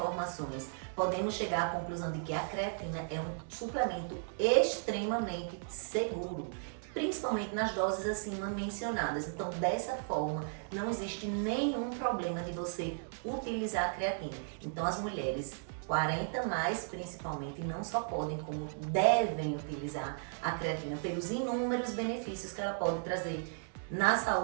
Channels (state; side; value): silent; left; digital silence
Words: podemos chegar à conclusão de que a creatina é um suplemento extremamente seguro, principalmente nas doses acima mencionadas. Então, dessa forma, não existe nenhum problema de você utilizar a creatina. Então, as mulheres 40 mais, principalmente, não só podem, como devem utilizar a creatina pelos inúmeros benefícios que ela pode trazer na